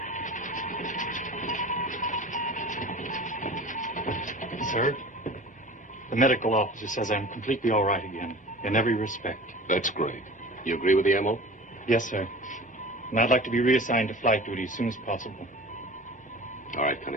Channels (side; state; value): both; normal; correlation 0.38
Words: Sir, the medical officer says I'm completely all right again, in every respect. That's great. You agree with the MO? Yes, sir. And I'd like to be reassigned to flight duty as soon as possible. All right,